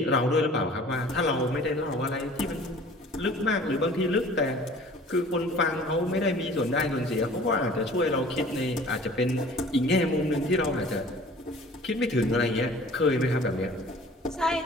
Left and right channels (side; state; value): both; normal; correlation 0.48